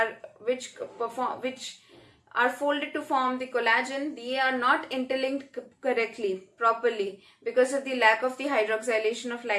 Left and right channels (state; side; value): identical; both; correlation 1.00